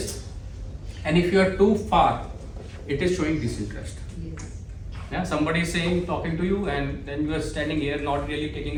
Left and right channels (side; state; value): both; identical; correlation 1.00